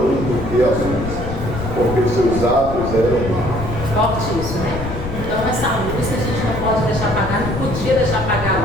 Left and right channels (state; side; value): noise; left; rumble, 7 dB below the sound